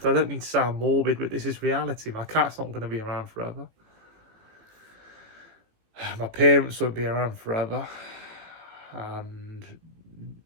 I don't mean to sound morbid, but this is reality. My cat's not going to be around forever. My parents won't be around forever. And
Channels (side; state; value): left; late; 18 ms